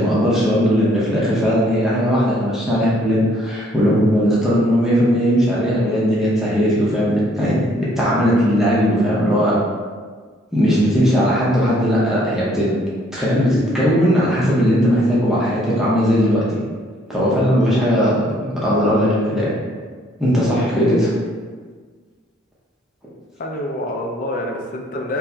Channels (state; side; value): normal; both; correlation 0.64